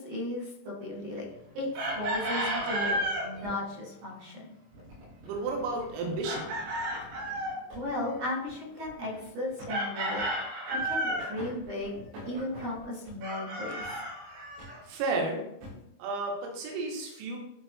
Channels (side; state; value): left; late; 25 ms